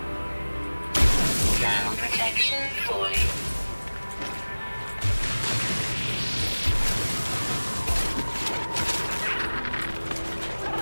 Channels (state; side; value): inverted; both; correlation -1.00